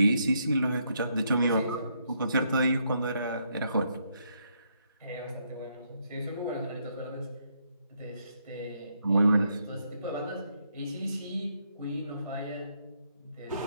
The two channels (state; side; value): inverted; both; correlation -0.74